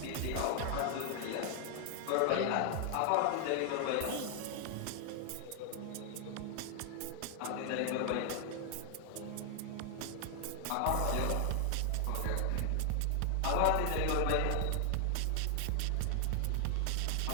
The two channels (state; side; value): different; both; correlation 0.00